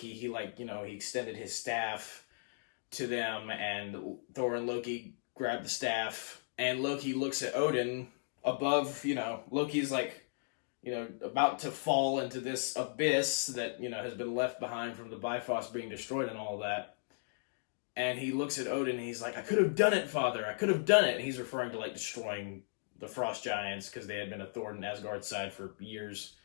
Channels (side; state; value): right; silent; digital silence